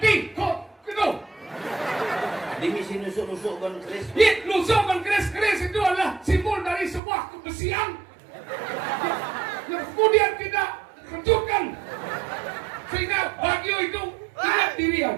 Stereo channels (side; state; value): left; drops out; at 7.0 s